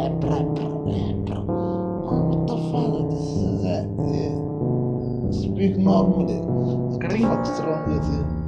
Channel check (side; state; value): both; identical; correlation 1.00